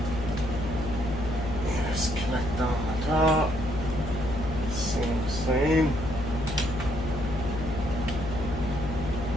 Connect on the top. Same.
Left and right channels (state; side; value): noise; left; hum, 6 dB below the sound